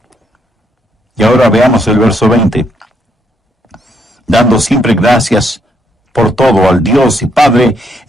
Y ahora veamos el verso 20. Dando siempre gracias por todo al Dios y Padre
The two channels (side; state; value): both; normal; correlation 0.74